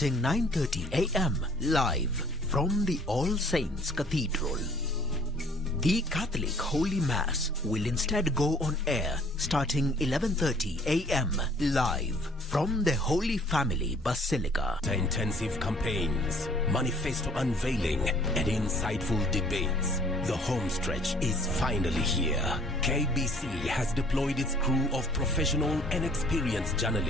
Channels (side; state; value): both; normal; correlation 0.56